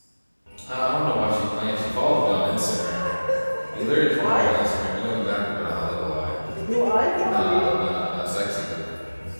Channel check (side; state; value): both; inverted; correlation -1.00